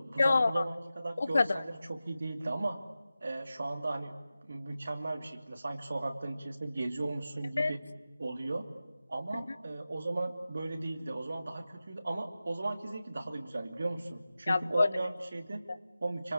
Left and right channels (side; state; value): both; inverted; correlation -0.94